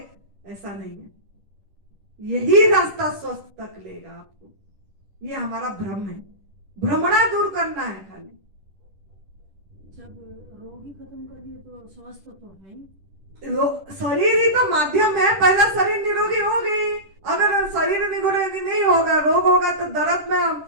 ऐसा नहीं है। यही रास्ता स्वस्थ तक लेगा आपको। ये हमारा भ्रम है, भ्रमणा दूर करना है खाली। जब रोग ही खत्म कर दिए तो स्वस्थ तो है ही। शरीर ही तो माध्यम है, पहला शरीर निरोगी होगी। अगर शरीर निरोगी नहीं होगा, रोग होगा, तो दर्द में हम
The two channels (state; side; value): late; left; 10 ms